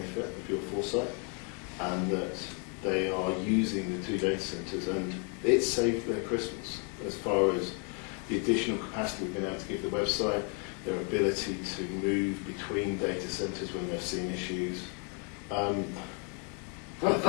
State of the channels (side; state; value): right; quieter; 38.0 dB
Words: of your foresight, and that they are using the 2 data centres, and it's saved their Christmas as far as the additional capacity we've been able to give the website, their ability to move between data centres when they've seen issues.